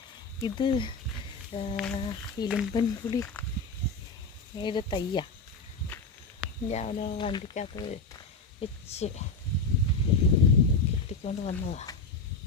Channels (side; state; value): right; quieter; 3.8 dB